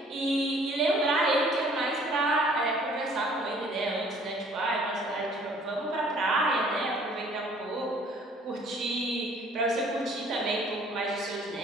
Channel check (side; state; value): both; normal; correlation 0.56